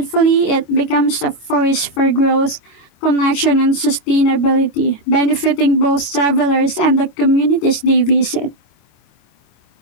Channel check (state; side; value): late; right; 25 ms